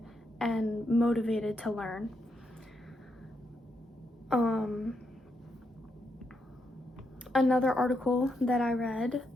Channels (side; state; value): both; normal; correlation 0.81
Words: and motivated to learn. Another article that I read